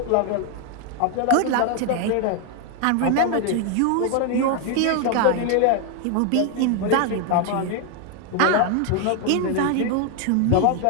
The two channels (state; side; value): different; both; correlation 0.01